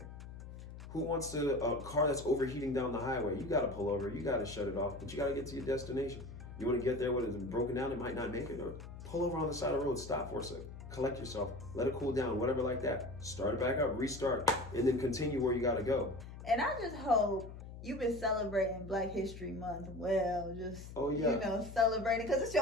Who wants a car that's overheating down the highway? You gotta pull over, you gotta shut it off, but you gotta get to your destination. You wanna get there when it's broken down, it might not make it, or pull over on the side of the road, stop for a second, collect yourself, let it cool down, whatever like that. Start it back up, restart, and then continue where you gotta go. And I just hope you've been celebrating Black History Month well, just, celebrating, because it's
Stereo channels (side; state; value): left; noise; hum, 12 dB below the sound